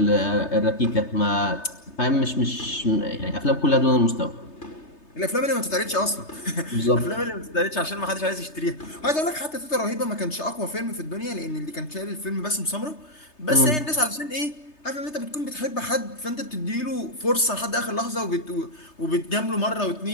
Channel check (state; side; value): late; right; 3.3 ms